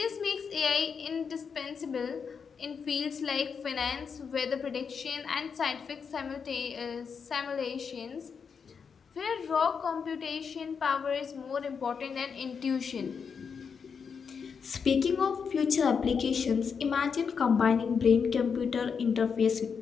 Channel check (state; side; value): quieter; right; 6.2 dB